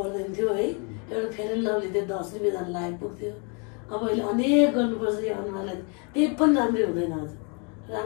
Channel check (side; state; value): right; quieter; 35.7 dB